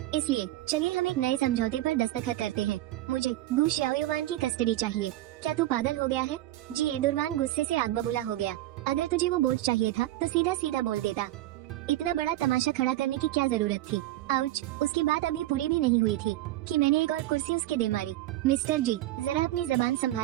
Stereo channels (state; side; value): quieter; left; 15.5 dB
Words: इसलिए चलिए हम एक नए समझौते पर दस्तखत करते हैं। मुझे गु शाओयुआन की कस्टडी चाहिए। क्या तू पागल हो गया है? जी एडुरवान गुस्से से आग बबूला हो गया। अगर तुझे वो बोझ चाहिए था तो सीधा सीधा बोल देता। इतना बड़ा तमाशा खड़ा करने की क्या जरूरत थी? आउच, उसकी बात अभी पूरी भी नहीं हुई थी कि मैंने एक और कुर्सी उसके दे मारी। मिस्टर जी, जरा अपनी जबान